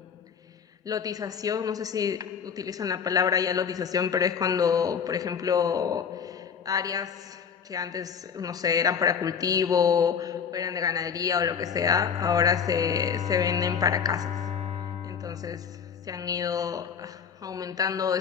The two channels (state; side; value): quieter; right; 7.0 dB